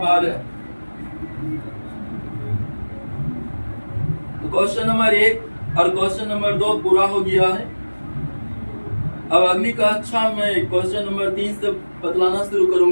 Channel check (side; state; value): both; inverted; correlation -1.00